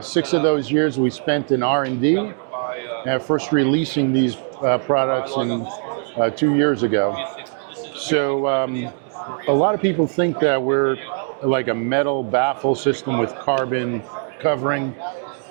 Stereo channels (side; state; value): left; silent; 56 dB below the other